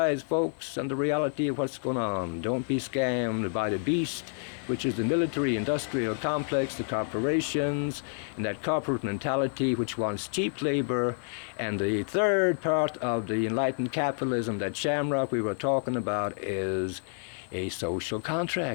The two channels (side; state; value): right; silent; 59 dB below the other